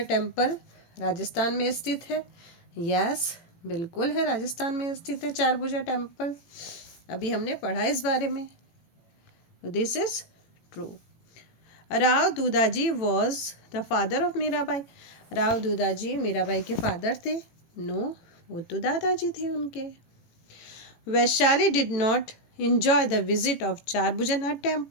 temple Rajasthan में स्थित है। यस, बिल्कुल है, राजस्थान में स्थित है चारभुजा टेम्पल, अभी हमने पढ़ा इस बारे में। This is true. Rao Dudhaji was the father of Mirabai, Rao Dudhaji Mirabai के फादर थे। नो, वो तो दादाजी थे उनके। Vaishali did not enjoy the visit of Charbhujanath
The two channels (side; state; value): right; late; 18 ms